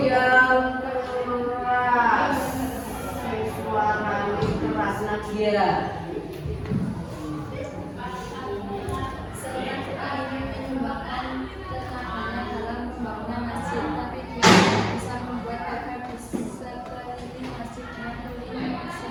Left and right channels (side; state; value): both; identical; correlation 1.00